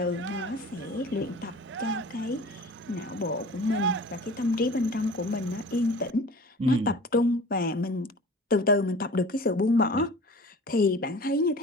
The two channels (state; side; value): normal; both; correlation 0.42